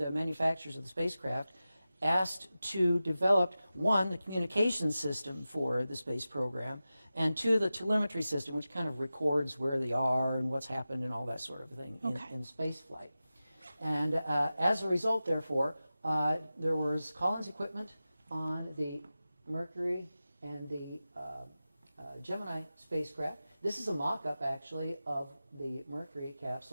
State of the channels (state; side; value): inverted; both; correlation -0.95